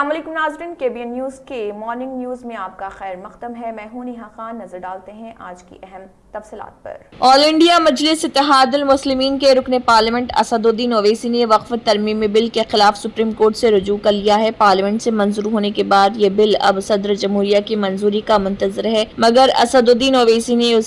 वालेकुम नाज़रीन, KBN न्यूज़ के मॉर्निंग न्यूज़ में आपका खैर मक़दम है। मैं हूं नेहा खान। नजर डालते हैं आज की अहम तफसीलात पर। ऑल इंडिया मजलिस इत्तेहादुल मुस्लिमीन के रुकने पार्लियामेंट असदुद्दीन ओवैसी ने वक्फ तरमीमी बिल के खिलाफ सुप्रीम कोर्ट से रुजू कर लिया है। पार्लियामेंट से मंजूर होने के बाद ये बिल अब सदर जमहूरिया की मंजूरी का मुंतजर है, मगर असदुद्दीन ओवैसी ने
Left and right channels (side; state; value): both; identical; correlation 1.00